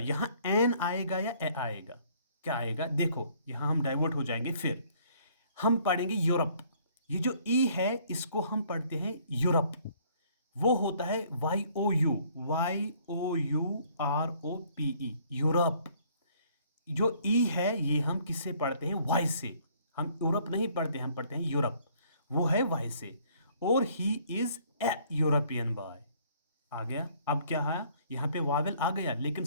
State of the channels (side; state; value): both; inverted; correlation -0.61